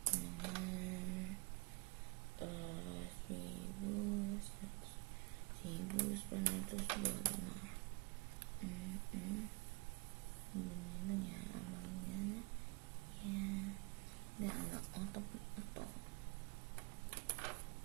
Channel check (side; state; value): left; quieter; 27.1 dB